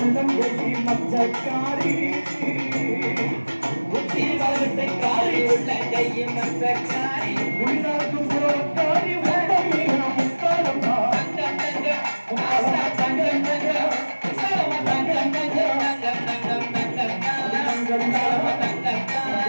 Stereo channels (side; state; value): both; inverted; correlation -1.00